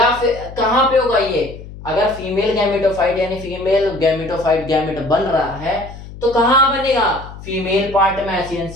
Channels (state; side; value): noise; left; hum, 15 dB below the sound